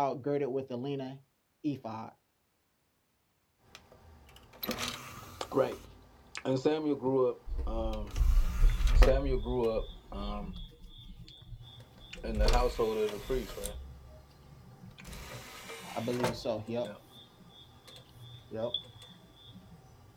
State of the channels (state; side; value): identical; both; correlation 1.00